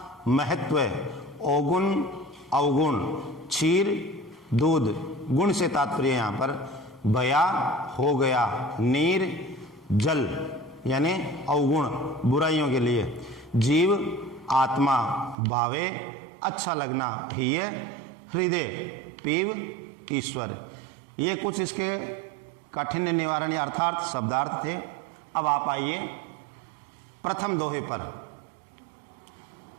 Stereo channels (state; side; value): drops out; left; at 15.4 s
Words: महत्व, औगुण, अवगुण, क्षीर, दूध, गुण से तात्पर्य यहाँ पर भया, हो गया, नीर, जल यानी अवगुण बुराइयों के लिए, जीव, आत्मा, भावे, अच्छा लगना, हिय, हृदय, पीव, ईश्वर। ये कुछ इसके काठिन्य निवारण अर्थात शब्दार्थ थे। अब आप आइए प्रथम दोहे पर।